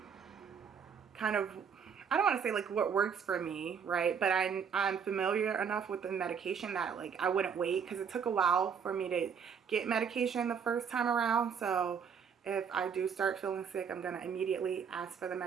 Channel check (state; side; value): quieter; left; 6.9 dB